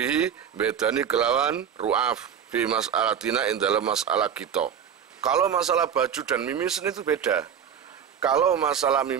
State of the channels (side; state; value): left; quieter; 8.2 dB